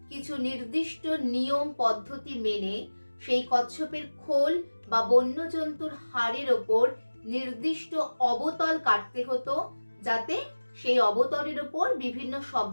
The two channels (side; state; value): both; inverted; correlation -1.00